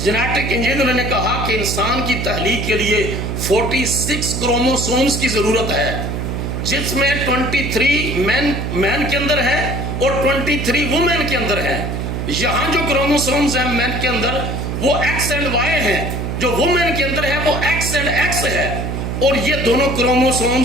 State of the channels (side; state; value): right; noise; hum, 3 dB below the sound